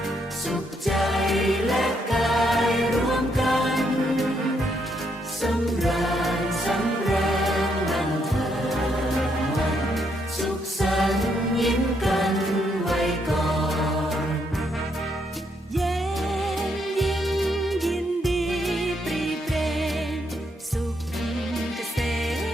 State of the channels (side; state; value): both; normal; correlation 0.76